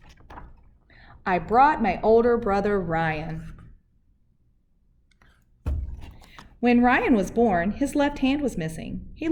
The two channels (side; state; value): both; identical; correlation 1.00